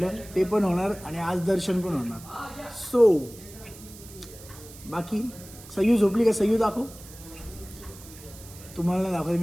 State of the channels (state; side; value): noise; right; hiss, 18 dB below the sound